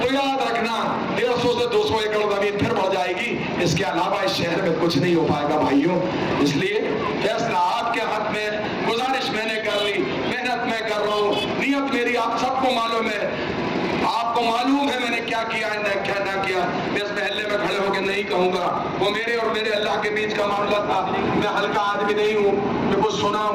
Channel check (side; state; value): both; identical; correlation 1.00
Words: तो याद रखना 150 से 200 एकड़ जमीन फिर बढ़ जाएगी। इसके अलावा इस शहर में कुछ नहीं हो पाएगा भाइयों। इसलिए फैसला आपके हाथ में। गुजारिश मैंने कर ली, मेहनत मैं कर रहा हूँ, नियत मेरी आप सबको मालूम है। आपको मालूम है मैंने क्या किया है क्या ना किया। मैं इस महल्ले में खड़े होकर नहीं कहूंगा, वो मेरे और मेरे अल्लाह के बीच का मामला था। मैं हल्का आदमी नहीं हूँ, मैं कुछ सुना